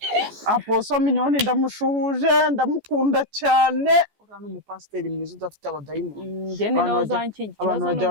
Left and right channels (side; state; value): left; late; 14 ms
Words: Apostle Minyoni ndamushuhuje ndamukunda cyane uriya ni umupasiteri mwiza udafite abadayimoni abantu bajya